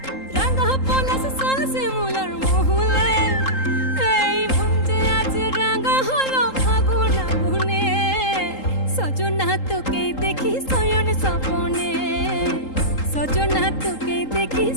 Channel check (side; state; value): right; late; 3.8 ms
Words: রাঙা পলাশ শাল শিমুলার মহুলে এই মন যে আজ রাঙা হলো ফাগুন আগুনে সজনা তোকে দেখি শয়ন স্বপনে সজনা তোকে দেখি